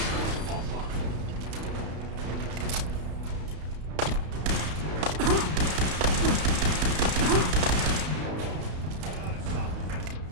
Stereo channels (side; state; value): left; late; 32 ms